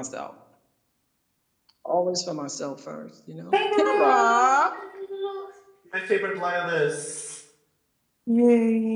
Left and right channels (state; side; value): identical; both; correlation 1.00